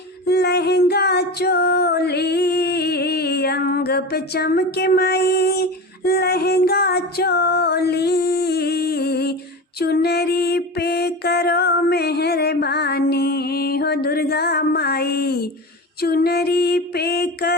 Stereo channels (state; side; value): normal; both; correlation 0.27